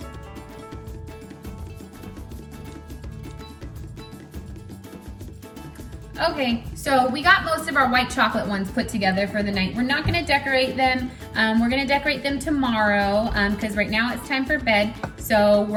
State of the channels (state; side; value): identical; both; correlation 1.00